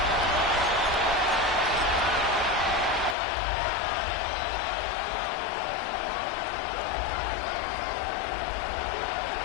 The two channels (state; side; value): drops out; right; at 3.2 s